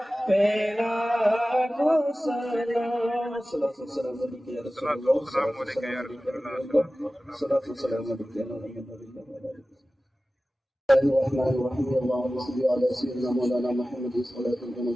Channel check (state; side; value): normal; both; correlation 0.96